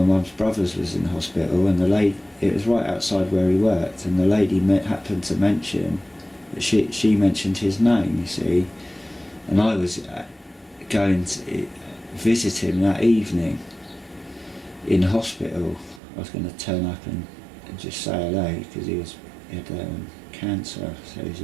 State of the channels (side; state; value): left; drops out; at 16.0 s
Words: mum's brothers was in hospital, and it was right outside where he worked, and the lady happened to mention that she mentioned his name, you see, and I was going to visit him that evening in hospital. I was going to turn up and just say hello, because he had cancer, so he was